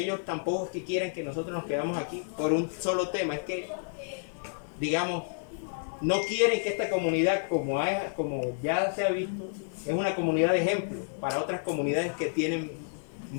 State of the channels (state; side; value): silent; right; digital silence